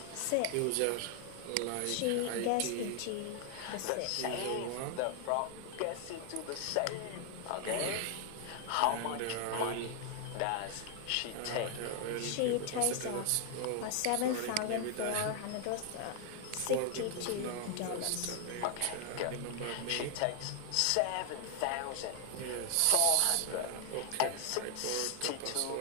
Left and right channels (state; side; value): different; both; correlation 0.00